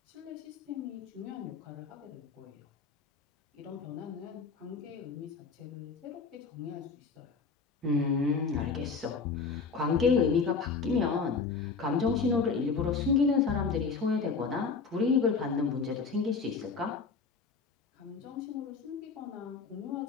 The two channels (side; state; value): right; quieter; 4.9 dB